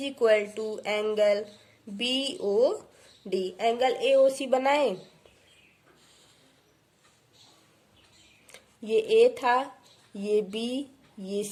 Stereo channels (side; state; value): both; identical; correlation 1.00